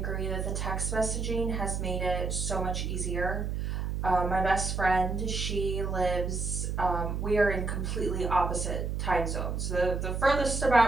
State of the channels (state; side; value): noise; right; hum, 2 dB below the sound